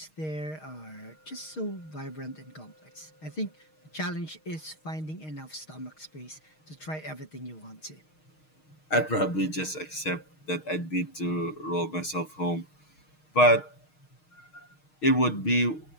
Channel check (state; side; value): late; right; 6.4 ms